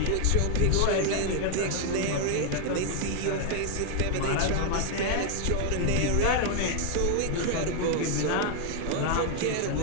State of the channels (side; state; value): both; different; correlation 0.00